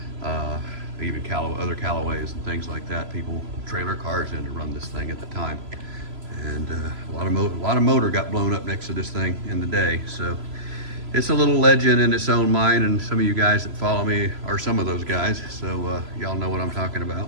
even other Callaways and things like that. People trailer cars in to run this thing at the time. And a lot of motor got blown up next to this thing in the day. So it's a little legend in its own mind, and some of you guys that follow me are some of those guys. So y'all know what I'm talking about.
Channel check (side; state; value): left; late; 3.0 ms